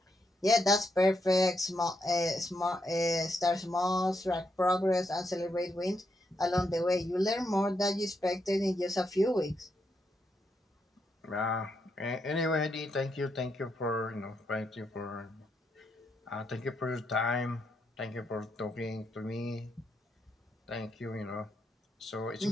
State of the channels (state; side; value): normal; both; correlation 0.80